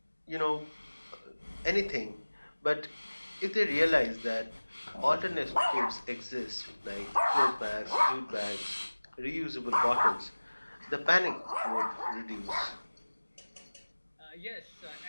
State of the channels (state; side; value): inverted; both; correlation -1.00